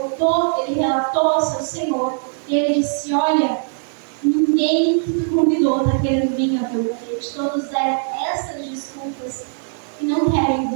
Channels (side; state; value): left; silent; 60 dB below the other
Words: ele relatou ao seu senhor, e ele disse: olha, ninguém que tu convidou está querendo vir ao teu banquete. Todos deram essas desculpas e não querem